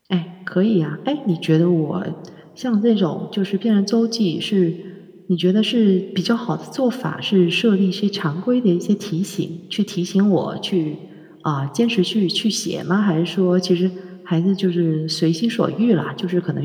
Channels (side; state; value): both; identical; correlation 1.00